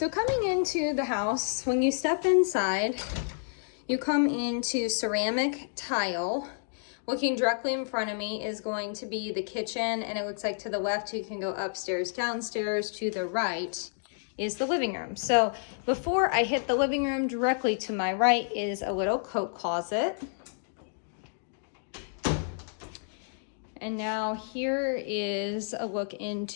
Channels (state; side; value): silent; right; digital silence